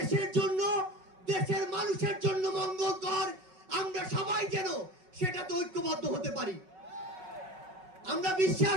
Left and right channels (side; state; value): left; late; 5.4 ms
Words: জন্য, দেশের মানুষের জন্য মঙ্গলকর, আমরা সবাই যেন সেটাতে ঐক্যবদ্ধ হতে পারি। আমরা